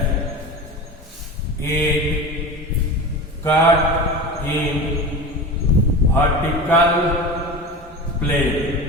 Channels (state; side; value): normal; both; correlation 0.29